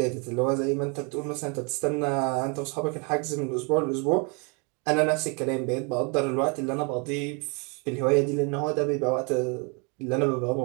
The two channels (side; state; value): left; quieter; 33.7 dB